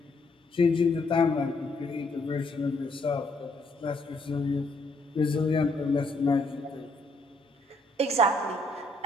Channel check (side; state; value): both; normal; correlation 0.72